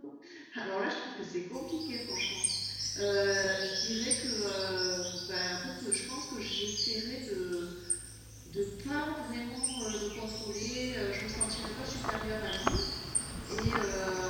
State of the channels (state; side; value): identical; both; correlation 1.00